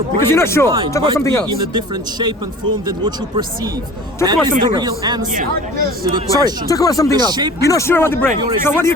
brain Because you're not sure. and mind Talk about something might else. be in a different shape and form than what you perceive. Talk That about is something the real else. answer to the Sorry, question. talk about something The else. shape You're not sure about the brain. of your So what are you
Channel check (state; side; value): normal; both; correlation 0.42